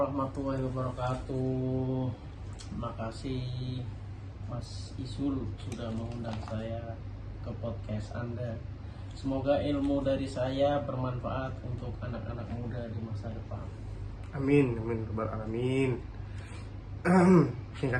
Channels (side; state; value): both; identical; correlation 1.00